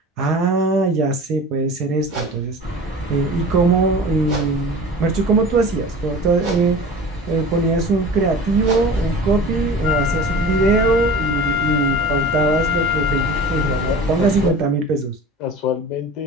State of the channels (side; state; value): both; normal; correlation 0.38